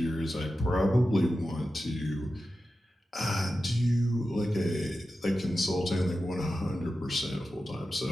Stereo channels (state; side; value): normal; both; correlation 0.92